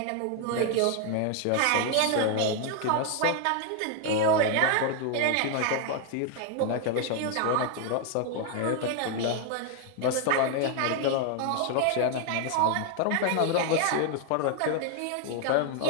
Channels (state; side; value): different; both; correlation 0.00